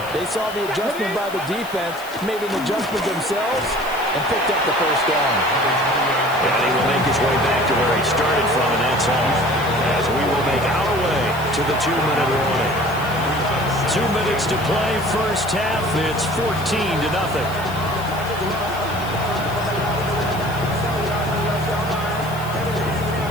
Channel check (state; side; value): noise; left; hiss, 17 dB below the sound